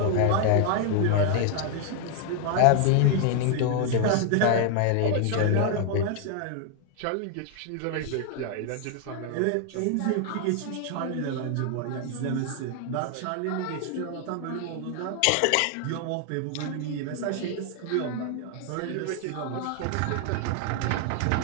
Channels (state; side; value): different; both; correlation 0.00